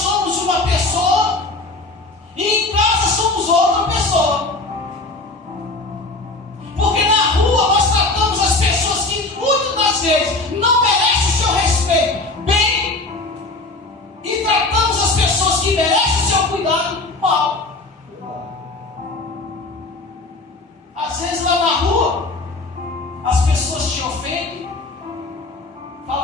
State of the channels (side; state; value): right; quieter; 3.1 dB